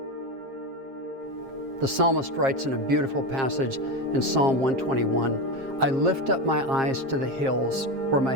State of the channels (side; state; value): left; late; 7.5 ms